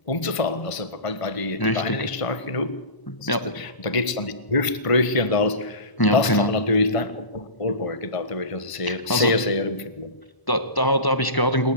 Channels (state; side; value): late; right; 1.0 ms